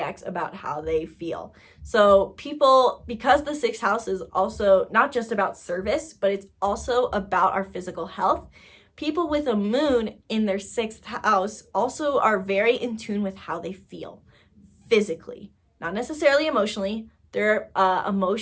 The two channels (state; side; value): identical; both; correlation 1.00